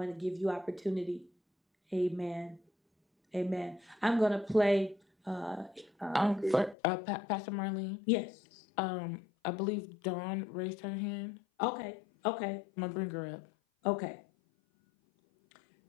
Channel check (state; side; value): drops out; right; at 6.8 s